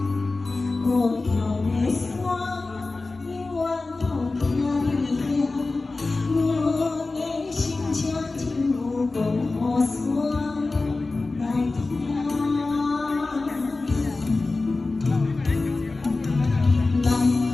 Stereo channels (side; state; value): right; quieter; 3.5 dB